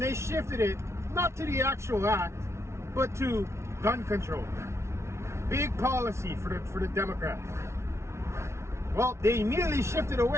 they shifted it, not to the actual act, but to gun control. Big policy for the Democrats. Well, they immediately shifted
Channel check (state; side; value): late; left; 0.13 ms